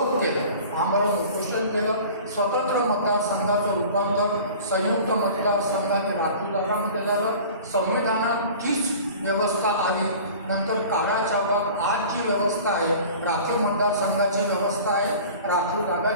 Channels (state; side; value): inverted; both; correlation -0.42